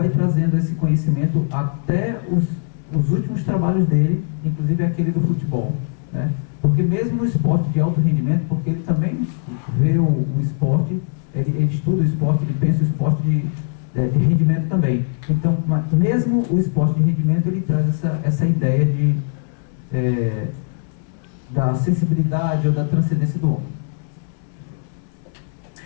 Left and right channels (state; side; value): silent; right; 65 dB below the other